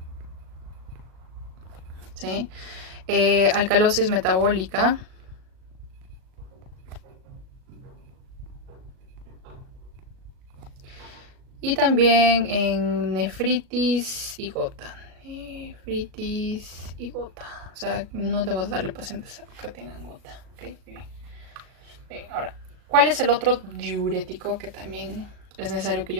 ¿sí? Alcalosis metabólica, y también en nefritis y gota. Nefritis y gota. O sea, no debo darle pacientes que tengan gota. ¿Okay? Bien. Ahora, ¿cuál es el otro diurético que también es necesario que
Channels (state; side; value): late; left; 37 ms